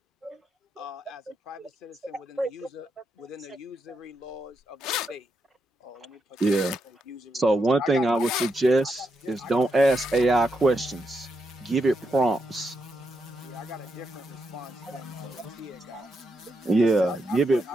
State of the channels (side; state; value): both; normal; correlation 0.82